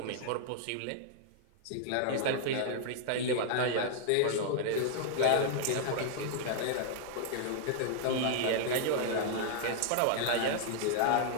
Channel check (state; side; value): different; both; correlation -0.01